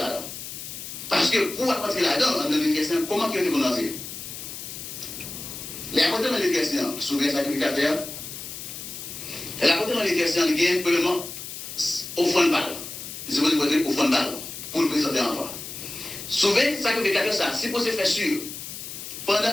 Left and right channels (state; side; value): noise; left; hiss, 9 dB below the sound